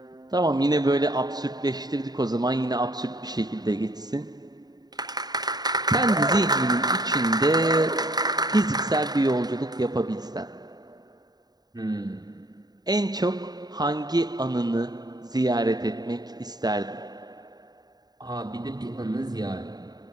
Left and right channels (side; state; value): left; late; 0.19 ms